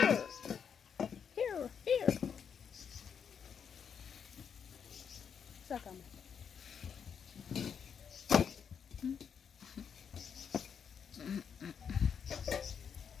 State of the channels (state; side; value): quieter; right; 7.2 dB